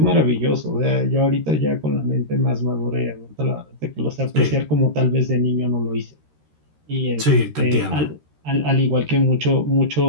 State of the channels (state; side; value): late; left; 13 ms